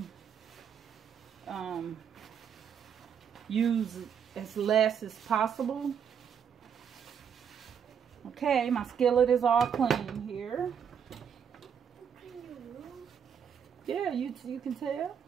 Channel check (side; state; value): left; quieter; 7.7 dB